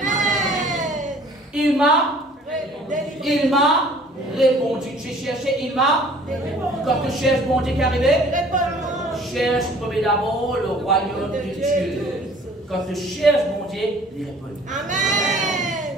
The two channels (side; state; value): both; normal; correlation 0.52